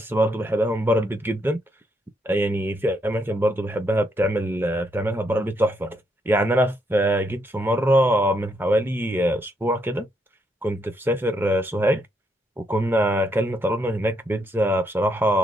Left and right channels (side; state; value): both; normal; correlation 0.76